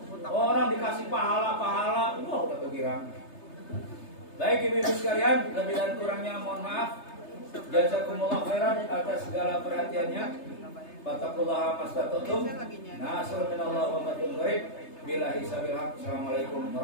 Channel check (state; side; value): late; right; 3.3 ms